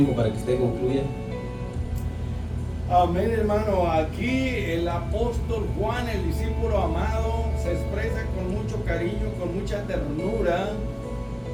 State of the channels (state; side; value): identical; both; correlation 1.00